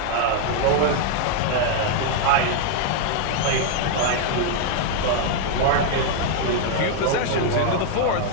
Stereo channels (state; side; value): different; both; correlation 0.00